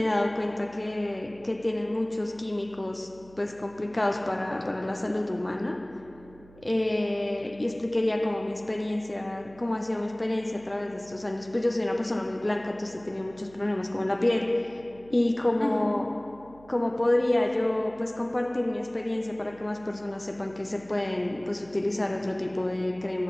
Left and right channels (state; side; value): noise; right; hum, 23 dB below the sound